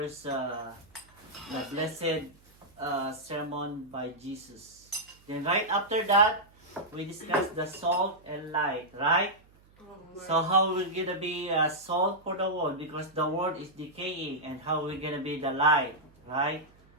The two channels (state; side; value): noise; right; hum, 29 dB below the sound